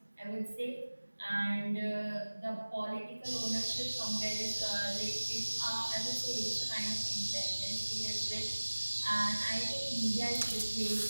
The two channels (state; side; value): inverted; both; correlation -1.00